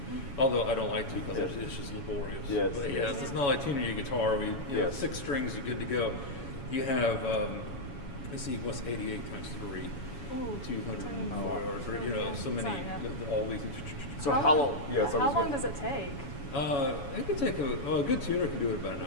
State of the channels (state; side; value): late; right; 7.1 ms